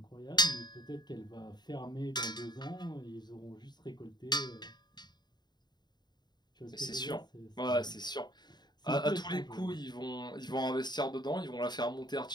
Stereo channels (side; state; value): right; late; 0.21 ms